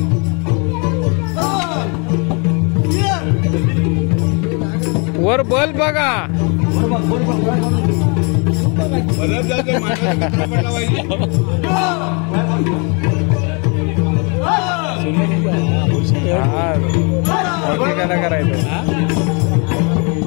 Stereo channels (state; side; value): quieter; right; 33.7 dB